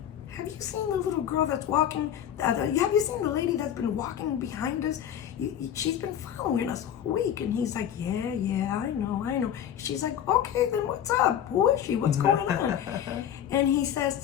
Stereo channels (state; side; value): quieter; right; 9.9 dB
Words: have you seen the little girl that's walking? Have you seen the lady that's been walking behind us? She's been following us all week." And he's like, yeah, I know. She's like, "Okay, then what's up? Who is she? What's going on?" And he